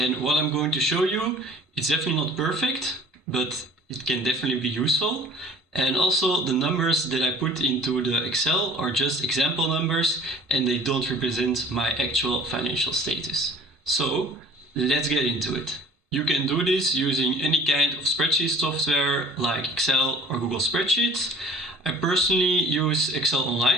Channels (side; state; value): both; normal; correlation 0.49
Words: what I'm going to show you, it's definitely not perfect, but it can definitely be useful. And also the numbers that I put into the Excel are just example numbers and they don't represent my actual financial status. So let's get into it. You can do this using any kind of spreadsheet software like Excel or Google Spreadsheets. I personally use Excel